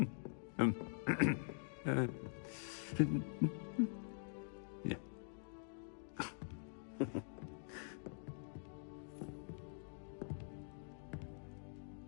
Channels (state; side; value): silent; right; digital silence